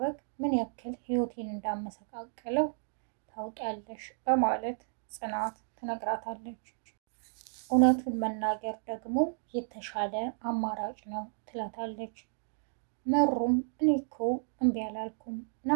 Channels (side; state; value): left; silent; digital silence